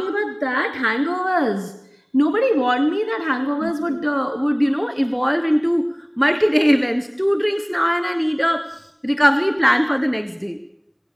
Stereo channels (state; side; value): identical; both; correlation 1.00